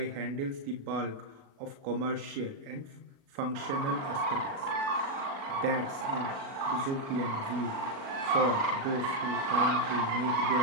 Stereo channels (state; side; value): late; left; 37 ms